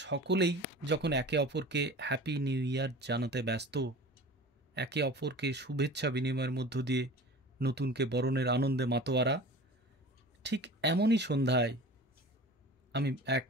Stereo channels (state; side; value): normal; both; correlation 0.39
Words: যখন একে অপরকে হ্যাপি নিউ ইয়ার জানাতে ব্যস্ত, একে অপরকে শুভেচ্ছা বিনিময়ের মধ্য দিয়ে নতুনকে বরণের আনন্দে মাতোয়ারা, ঠিক এমনই সন্ধ্যায় আমি এক